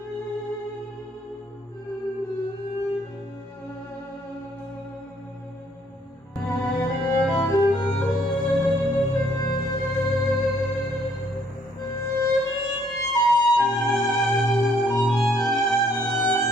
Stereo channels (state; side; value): normal; both; correlation 0.65